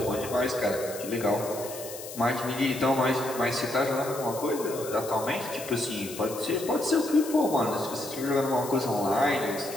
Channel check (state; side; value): noise; left; hiss, 12 dB below the sound